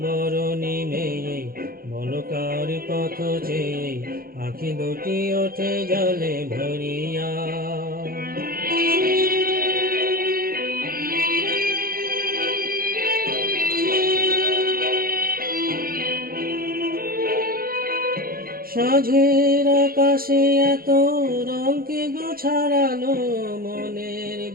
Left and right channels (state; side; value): late; left; 0.43 ms